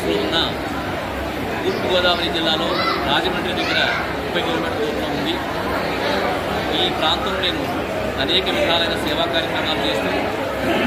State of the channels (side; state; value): both; identical; correlation 1.00